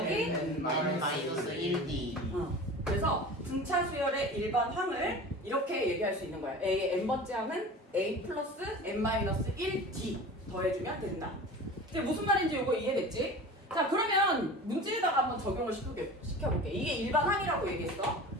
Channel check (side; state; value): both; normal; correlation 0.36